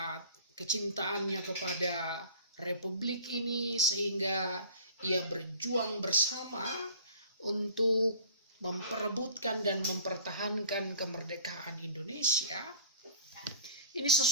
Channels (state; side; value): inverted; both; correlation -0.44